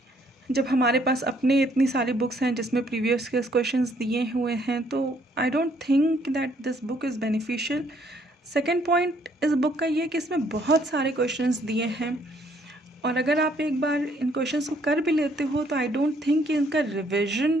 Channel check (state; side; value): normal; both; correlation 0.66